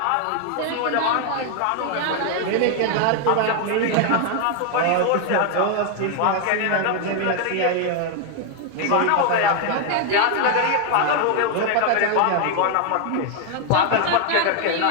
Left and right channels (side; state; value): both; different; correlation 0.00